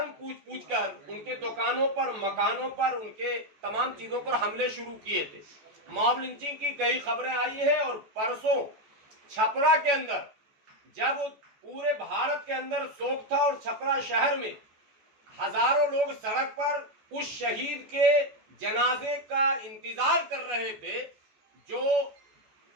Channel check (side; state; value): left; late; 14 ms